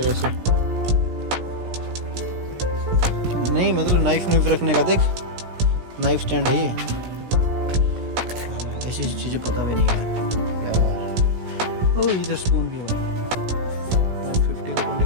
ऐसे नहीं, मतलब नाइफ रखने का। देख नाइफ स्टैंड है ये। ऐसी चीज़ें पता भी नहीं है। ओ इधर स्पून भी है 150 को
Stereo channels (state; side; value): late; left; 16 ms